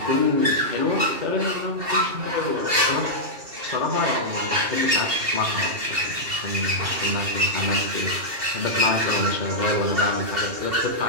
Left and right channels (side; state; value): left; late; 2.8 ms